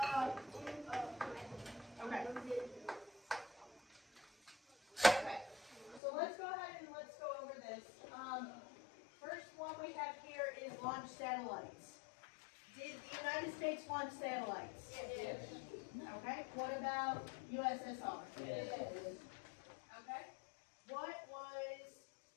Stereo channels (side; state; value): right; drops out; at 6.0 s